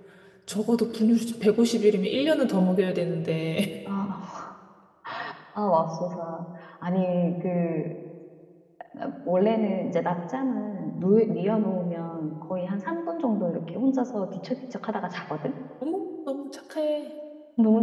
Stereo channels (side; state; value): both; identical; correlation 1.00